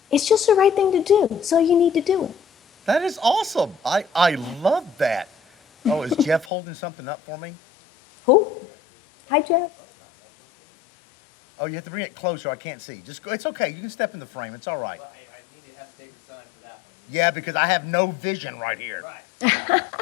just the right thing to do. So you need to do it. That is awesome. I love that. Oh, is Jeff holding something up for me? Who? Hi, Jeff. Oh, you have to bring it closer. I can't see. Just go. It's okay. You can step in the frame. It's all right. Well, I need to have a bigger sign for that one. Yeah, because I have no vision right here. Right.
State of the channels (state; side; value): drops out; right; at 6.5 s